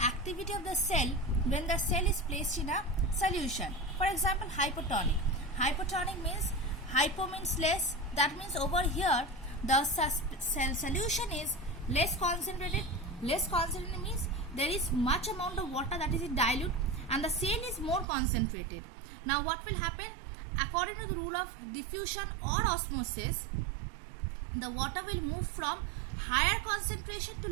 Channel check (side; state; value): left; drops out; at 18.1 s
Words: activity of the cell when the cell is placed in a solution. For example, hypotonic. Hypotonic means, hypo means less, that means over here the cell solution is less concentrated. Less concentrated means there is much amount of water that is in dilute and the cell is more concentrated. Now what will happen? According to the rule of diffusion or osmosis, the water will move from higher concentration to